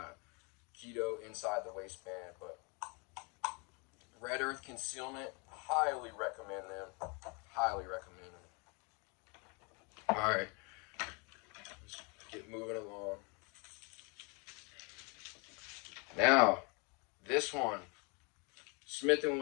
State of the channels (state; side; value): quieter; right; 32.0 dB